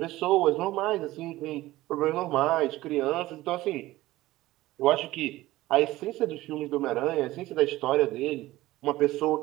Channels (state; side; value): quieter; left; 17.2 dB